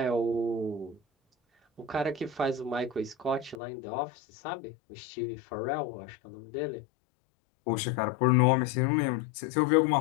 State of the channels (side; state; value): right; drops out; at 3.6 s